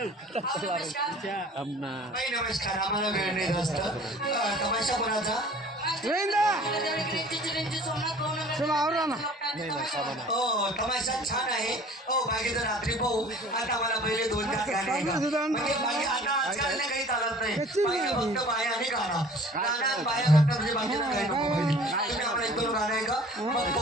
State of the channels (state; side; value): normal; both; correlation 0.48